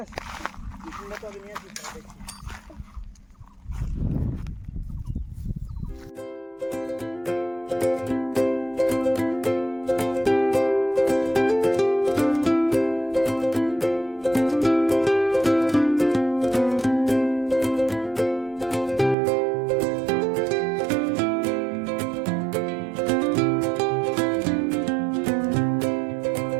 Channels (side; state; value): left; drops out; at 19.2 s